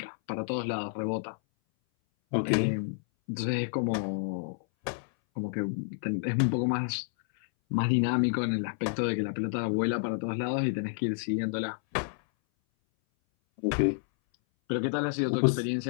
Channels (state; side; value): silent; right; 58 dB below the other